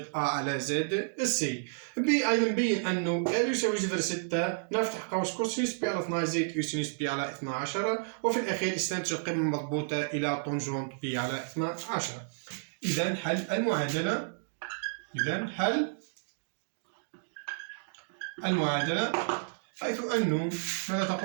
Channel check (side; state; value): left; silent; digital silence